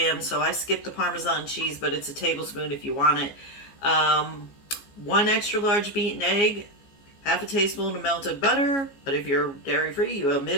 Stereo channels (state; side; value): late; right; 14 ms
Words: so I skipped the Parmesan cheese, but it's a tablespoon if you want it. One extra large beaten egg, half a teaspoon of melted butter, but if you're dairy free, you